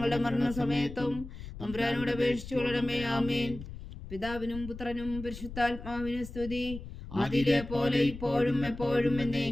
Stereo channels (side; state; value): left; noise; rumble, 12 dB below the sound